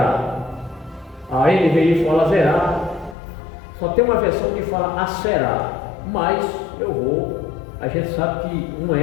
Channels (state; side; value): drops out; right; at 3.2 s